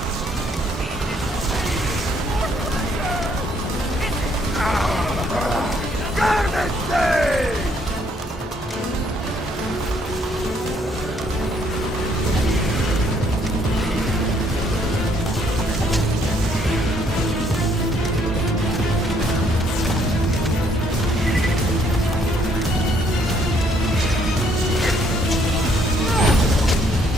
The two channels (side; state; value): both; normal; correlation 0.67